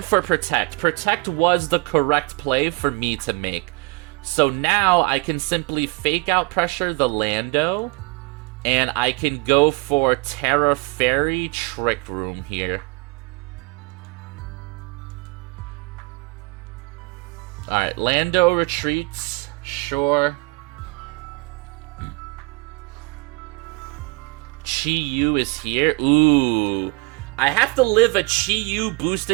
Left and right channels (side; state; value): left; quieter; 28.4 dB